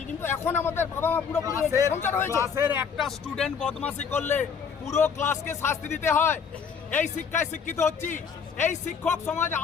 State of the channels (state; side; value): quieter; right; 6.5 dB